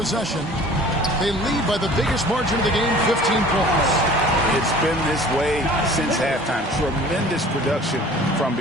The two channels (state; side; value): normal; both; correlation 0.47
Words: They lead by the biggest margin of the game, 15 points. It's been this way since halftime. Tremendous production from